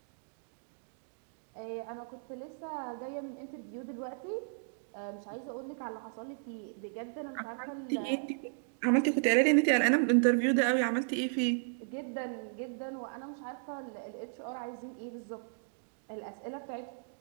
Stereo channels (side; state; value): left; silent; digital silence